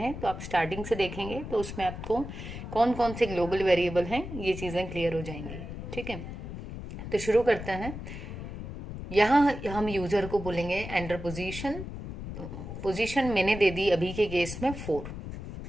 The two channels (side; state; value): left; noise; rumble, 9 dB below the sound